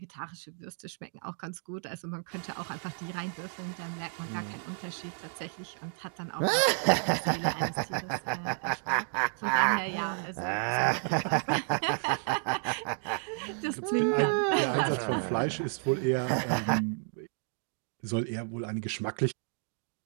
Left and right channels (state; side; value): silent; left; 57 dB below the other